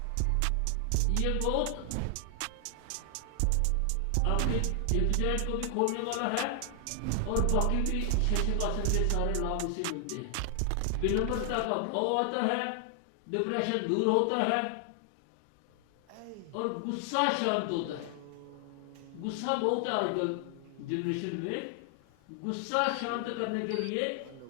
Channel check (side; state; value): both; different; correlation 0.00